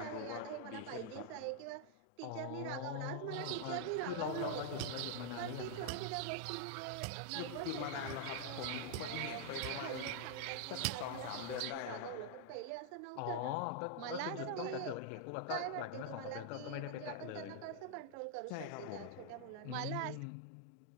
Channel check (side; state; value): both; different; correlation 0.00